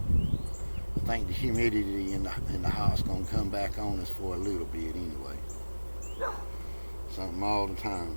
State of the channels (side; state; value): both; inverted; correlation -1.00